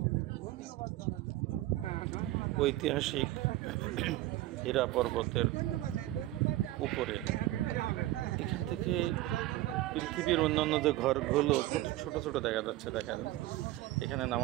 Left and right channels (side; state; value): left; quieter; 16.2 dB